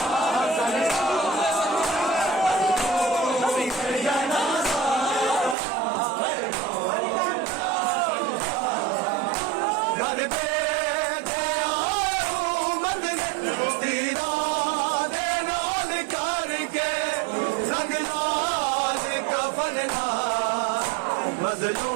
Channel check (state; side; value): drops out; left; at 5.6 s